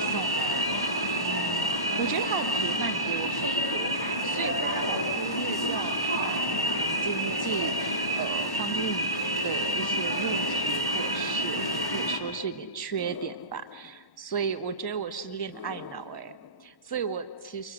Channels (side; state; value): right; late; 1.1 ms